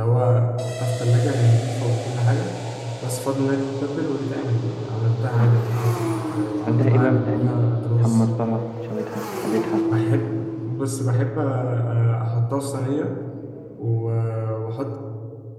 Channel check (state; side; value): identical; both; correlation 1.00